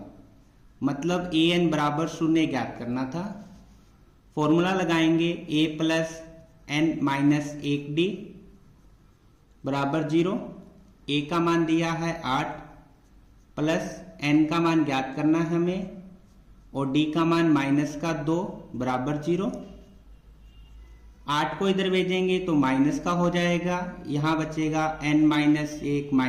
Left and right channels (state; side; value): identical; both; correlation 1.00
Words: मतलब an बराबर 0 ज्ञात करना था। फॉर्मूला लगाएंगे A plus n minus 1D बराबर 0। A का मान दिया है 8 प्लस n का मान ज्ञात करना है हमें, और D का मान -2 बराबर 0। 8 को इधर भेजेंगे तो माइनस का हो जाएगा, यहां बचेगा n माइनस 1